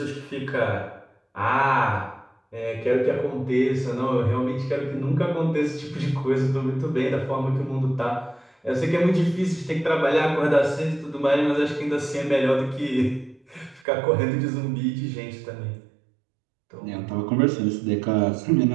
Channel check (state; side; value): drops out; left; at 13.9 s